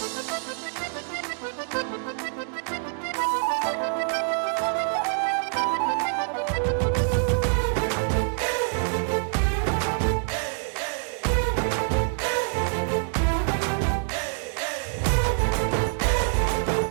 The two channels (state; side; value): silent; left; digital silence